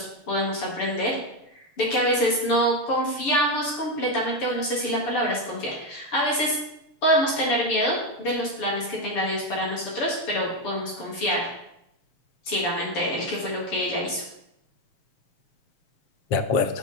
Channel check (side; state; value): right; late; 6.9 ms